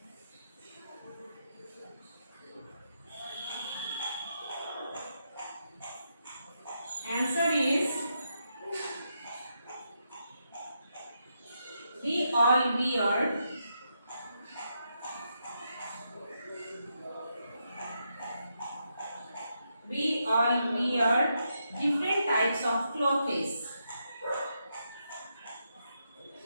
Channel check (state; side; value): inverted; both; correlation -0.82